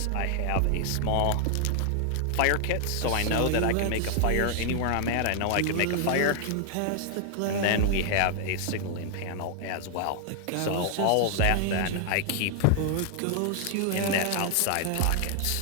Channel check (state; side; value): different; both; correlation 0.00